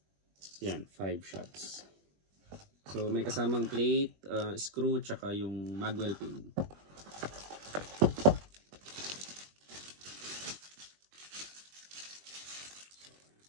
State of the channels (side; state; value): left; late; 21 ms